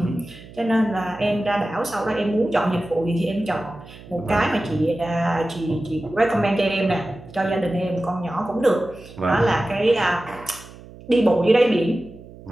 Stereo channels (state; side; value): noise; right; hum, 18 dB below the sound